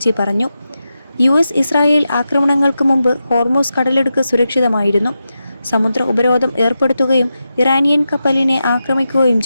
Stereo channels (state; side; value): inverted; both; correlation -0.89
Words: പറഞ്ഞു. US ഇസ്രായേൽ ആക്രമണങ്ങൾക്ക് മുമ്പ് ഹോർമൂസ് കടലിടുക്ക് സുരക്ഷിതമായിരുന്നു. സമുദ്ര ഉപരോധം ഏർപ്പെടുത്തുകയും ഇറാനിയൻ കപ്പലിനെ ആക്രമിക്കുകയും